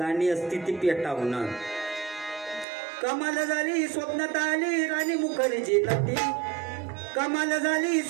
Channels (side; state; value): left; drops out; at 2.7 s